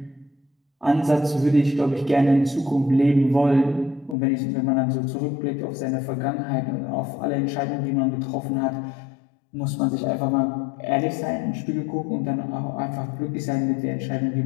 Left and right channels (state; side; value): drops out; right; at 4.2 s